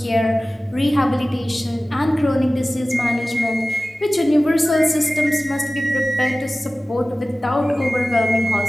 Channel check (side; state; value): both; normal; correlation 0.97